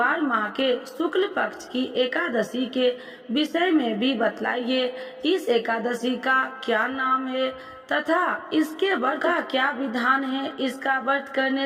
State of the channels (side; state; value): both; identical; correlation 1.00